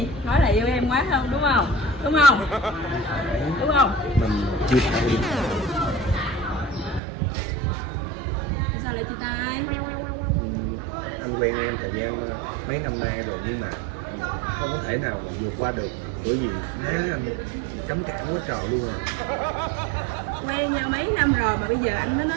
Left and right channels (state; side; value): drops out; left; at 7.0 s